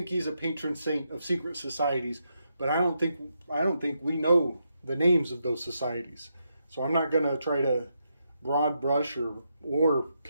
he's a patron saint of secret societies, but I don't think we know the names of those societies. So I'm not going to try to broad brush or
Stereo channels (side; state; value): both; inverted; correlation -0.82